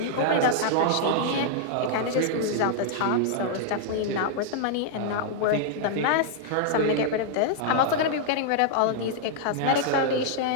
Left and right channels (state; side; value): different; both; correlation -0.01